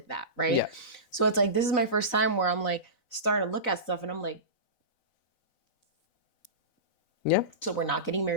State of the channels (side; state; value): right; late; 4.0 ms